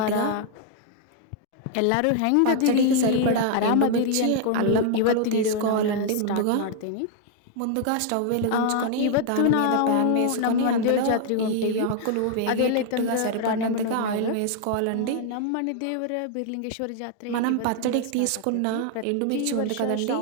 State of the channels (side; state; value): both; different; correlation 0.00